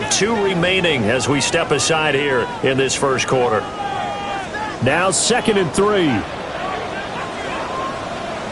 2 remaining as we step aside here in this first quarter. Now 2nd and 3.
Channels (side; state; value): both; identical; correlation 1.00